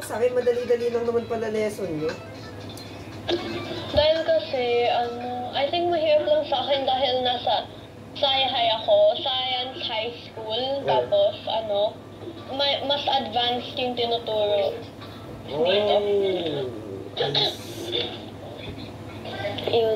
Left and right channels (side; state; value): both; identical; correlation 1.00